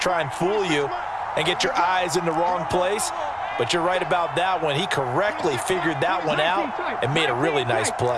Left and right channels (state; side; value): identical; both; correlation 1.00